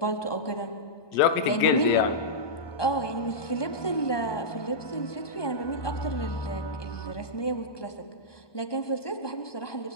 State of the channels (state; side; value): late; right; 1.2 ms